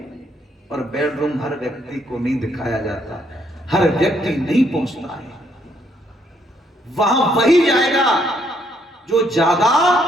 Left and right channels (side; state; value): both; normal; correlation 0.71